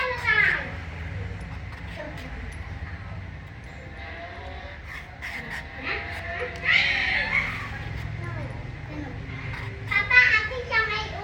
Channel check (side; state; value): both; identical; correlation 1.00